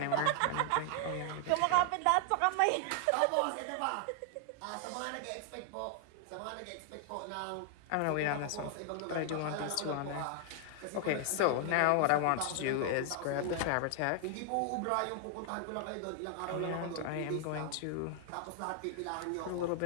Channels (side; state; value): both; different; correlation 0.00